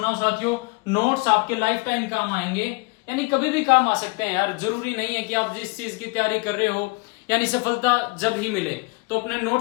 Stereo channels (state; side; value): quieter; right; 28.6 dB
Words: साथियों। नोट्स आपके लाइफ टाइम काम आएंगे, यानी कभी भी काम आ सकते हैं यार, जरूरी नहीं है कि आप जिस चीज की तैयारी कर रहे हो यानी सफलता जब ही मिले तो अपने